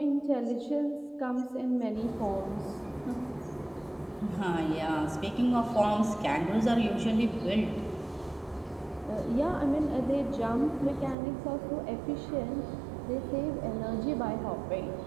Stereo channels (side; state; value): left; drops out; at 11.2 s